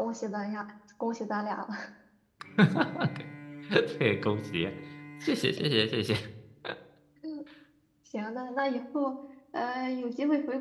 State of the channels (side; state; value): both; identical; correlation 1.00